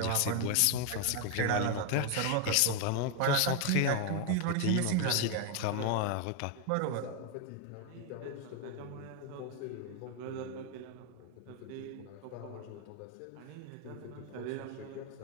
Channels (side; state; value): both; different; correlation 0.01